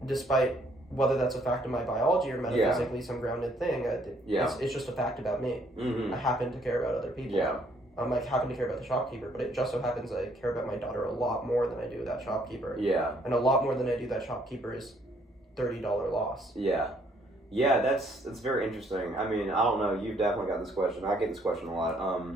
despite whether that's a fact of my biology or metaphysically some grounded thing. It's just a fact about me. I happen to care about other people. Yeah. I happen to care about the shopkeeper, but it just so happens I care about my daughter a lot more than I do that shopkeeper. Yeah. And a lot more than I do that shopkeeper is $30 loss. Yeah. Yeah, that's very interesting. I mean, I don't know, you've definitely got this question. I get this question a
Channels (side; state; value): both; normal; correlation 0.66